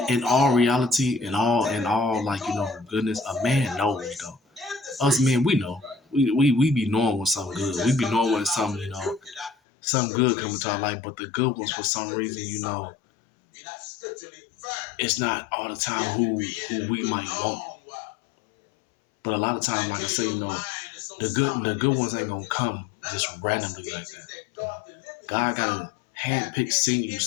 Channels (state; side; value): drops out; right; at 9.6 s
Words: all reality, in all like goodness, a man knows though. Us men, we know. We be knowing when something good. We be knowing when something something good coming to our life. But the good ones, for some reason, it's not all the time who we might want. But a lot of times, like I say, the good ones ain't gonna come just randomly like that. God gotta handpick, send you